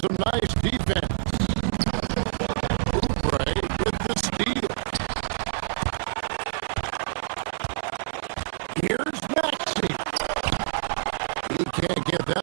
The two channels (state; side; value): silent; left; digital silence